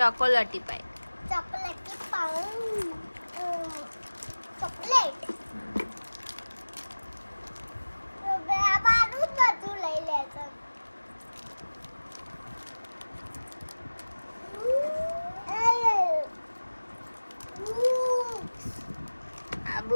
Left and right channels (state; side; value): inverted; both; correlation -1.00